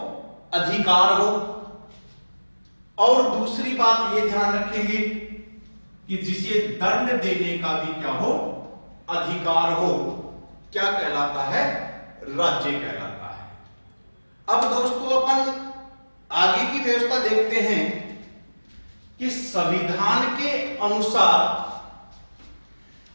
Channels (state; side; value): inverted; both; correlation -1.00